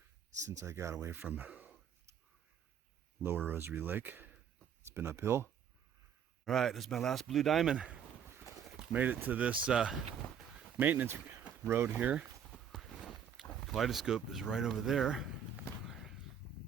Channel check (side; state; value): left; quieter; 8.0 dB